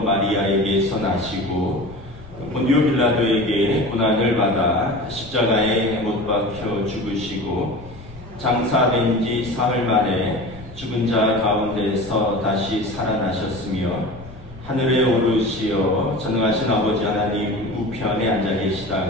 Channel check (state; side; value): noise; left; rumble, 19 dB below the sound